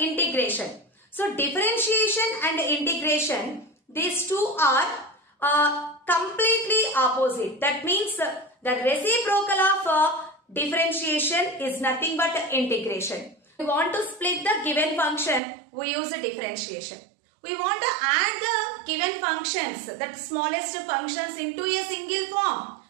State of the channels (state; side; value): drops out; left; at 15.4 s